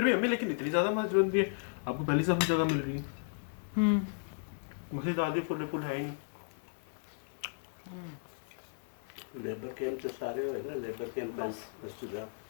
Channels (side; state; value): right; silent; digital silence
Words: भी हमें लेकिन इतनी ज़्यादा मस्जिद भी है, आपको पहली सफ में जगह मिल रही है। मस्जिद आधी फुल है ही नहीं। लेबर कैंप तो सारे हुए ना, लेबर कैंप मस्जिद